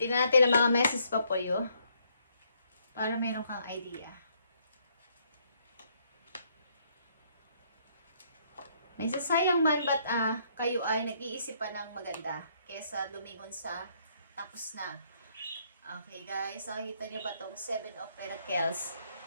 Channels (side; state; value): both; inverted; correlation -0.70